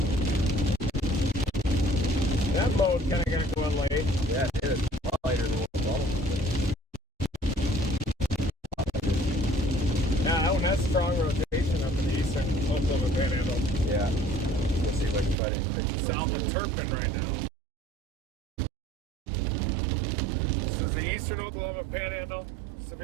That mode kind of got going late. Yeah, it is. A lot later than what the bottom was. Yeah, that one has strong rotation up in the eastern Oklahoma Panhandle. Yeah. Let's see if I can find anything. South of Turpin right now. This is the eastern Oklahoma Panhandle.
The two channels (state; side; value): drops out; left; at 15.4 s